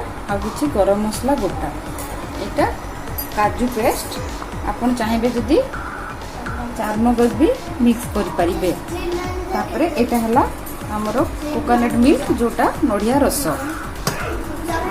आ किछि गरम मसला गोटा एटा काजू पेस्ट आपन चाहिए जदि चारमगज भी मिक्स करि परिबे। तापरे एटा हला हमर कोकोनट मिल्क जोटा नडिया रस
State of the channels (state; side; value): identical; both; correlation 1.00